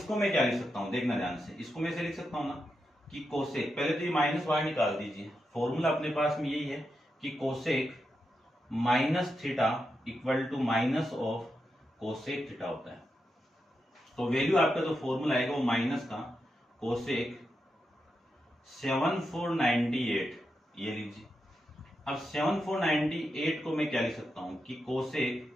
मैं क्या लिख सकता हूं, देखना ध्यान से, इसको मैं से लिख सकता हूं ना कि कोसेक, पहले तो ये माइनस बाहर निकाल दीजिए, फॉर्मूला अपने पास में यही है कि cosec minus theta equal to minus of cosec theta होता है। तो वैल्यू आपका जो फॉर्मूला आएगा वो माइनस का कोसेक 7498 ये लीजिए। अब 7498 को मैं क्या लिख सकता हूं कि कोसेक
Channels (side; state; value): both; normal; correlation 0.86